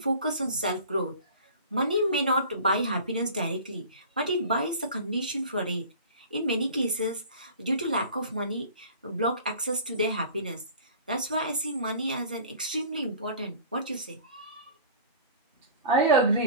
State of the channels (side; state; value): both; inverted; correlation -0.42